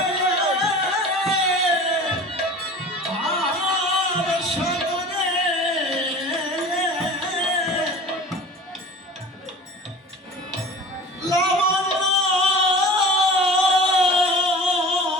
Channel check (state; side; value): normal; both; correlation 0.39